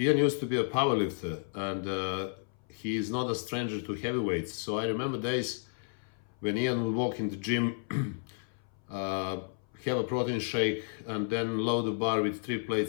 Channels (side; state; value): right; silent; 56 dB below the other